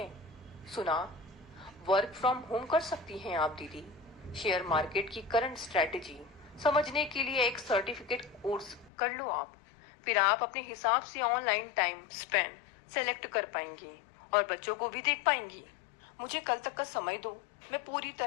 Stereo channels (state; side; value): drops out; right; at 8.9 s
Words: सुना? वर्क फ्रॉम होम कर सकती हैं आप दीदी। शेयर मार्केट की करंट स्ट्रेटेजी समझने के लिए एक सर्टिफिकेट कोर्स कर लो आप। फिर आप अपने हिसाब से ऑनलाइन टाइम स्पेंड सेलेक्ट कर पाएंगी और बच्चों को भी देख पाएंगी। मुझे कल तक का समय दो, मैं पूरी